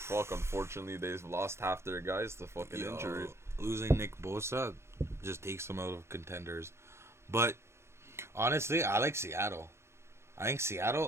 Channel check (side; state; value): left; late; 0.13 ms